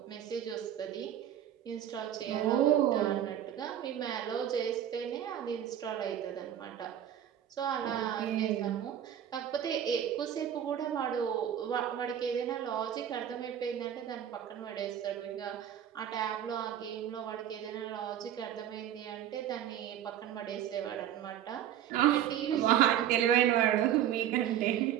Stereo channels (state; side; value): quieter; left; 10.5 dB